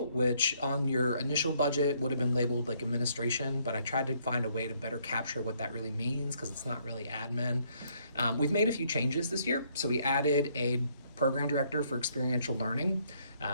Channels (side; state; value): both; inverted; correlation -0.68